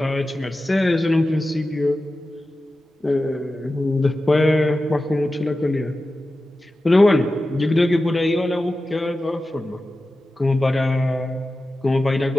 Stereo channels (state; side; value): normal; both; correlation 0.94